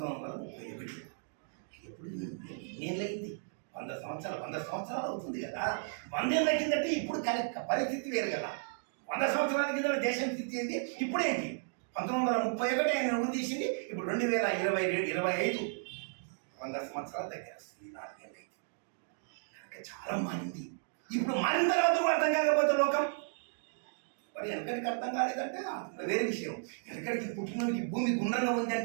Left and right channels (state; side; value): silent; left; digital silence